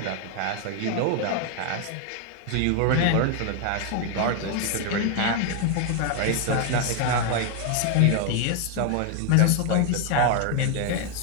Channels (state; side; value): different; both; correlation 0.00